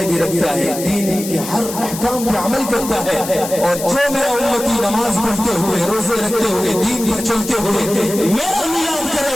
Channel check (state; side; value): noise; left; hiss, 9 dB below the sound